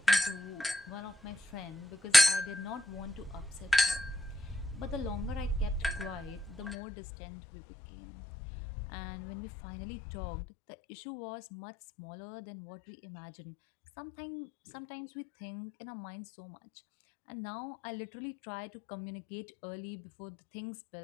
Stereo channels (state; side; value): drops out; right; at 6.8 s